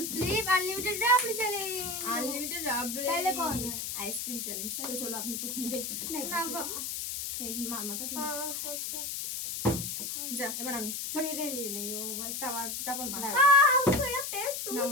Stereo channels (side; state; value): left; noise; hiss, 4 dB below the sound